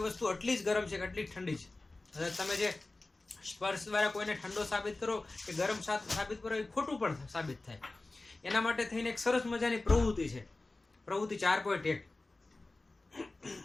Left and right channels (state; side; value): quieter; right; 3.1 dB